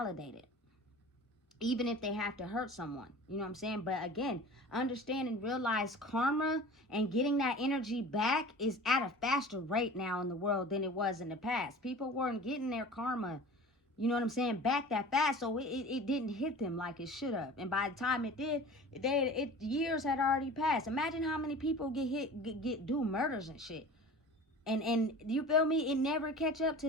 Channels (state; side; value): normal; both; correlation 0.39